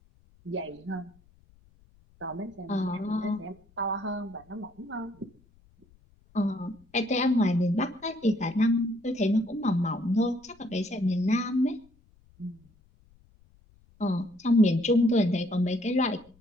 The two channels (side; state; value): left; noise; rumble, 30 dB below the sound